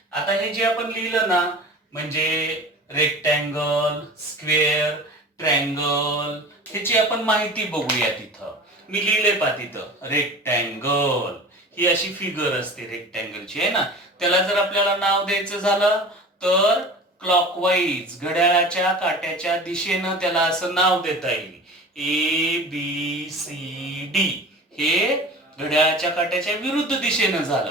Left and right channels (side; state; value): both; normal; correlation 0.37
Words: आता हे जे आपण लिहिलं ना, म्हणजे रेक्टँगल, स्क्वेअर, ट्रँगल, ह्याची आपण माहिती बघूया. तिथं मी लिहिले पा, तिथं रेक्टँगल ही अशी फिगर असते रेक्टँगलची, आहे ना. त्याला जर आपल्याला नाव द्यायचं झालं तर क्लॉकवाईज, घड्याळाच्या काट्याच्या दिशेनं त्याला असं नाव देता येईल. ABCD हे घड्याळाच्या काट्याच्या विरुद्ध दिशेनं